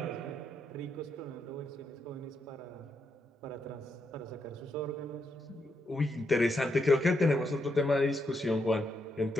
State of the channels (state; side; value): normal; both; correlation 0.80